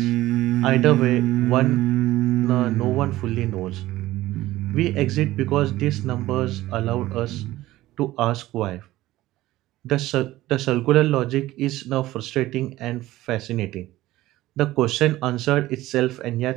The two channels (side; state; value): left; quieter; 16.5 dB